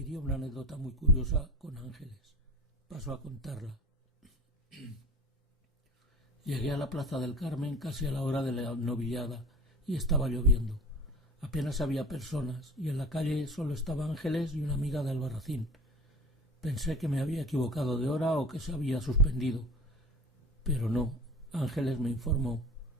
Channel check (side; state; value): both; normal; correlation 0.37